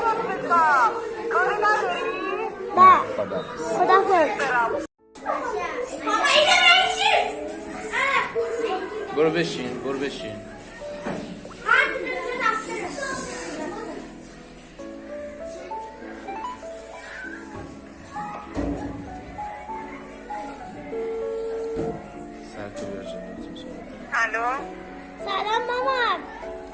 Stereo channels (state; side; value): identical; both; correlation 1.00